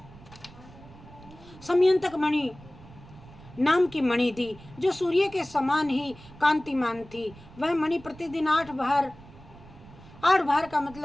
समयंतक मणि नाम की मणि दी, जो सूर्य के समान ही कांतिमान थी। वह मणि प्रतिदिन 8 भार का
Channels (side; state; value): right; noise; rumble, 20 dB below the sound